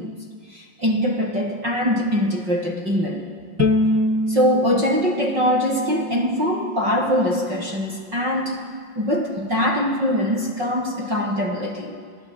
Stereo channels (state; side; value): late; left; 5.5 ms